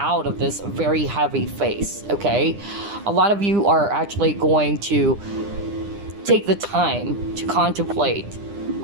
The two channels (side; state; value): left; late; 9.9 ms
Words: of this very heavy phase, okay? A lot of you are actually going to take the time to contemplate